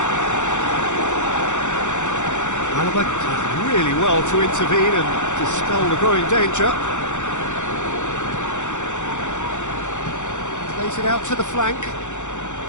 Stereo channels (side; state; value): right; late; 0.85 ms